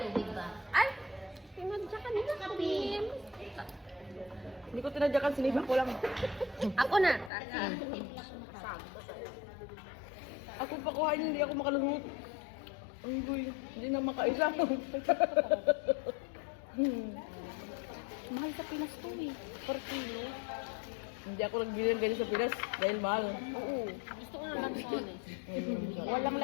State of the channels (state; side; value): drops out; right; at 7.3 s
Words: tubig ba? Ay, tinadyakan nila. Kape. Hindi ko tinadyakan, sinipa ko lang. Ako na. Ako pakuhain, hindi ako makaluhot. Ang guy, hindi na makaisa. Mahal sa Pinas to eh. Per kilo. Hindi ako nagbili ng ganyan sa Pinas dahil mahal. Oo. Gusto ko ng lansones. Walang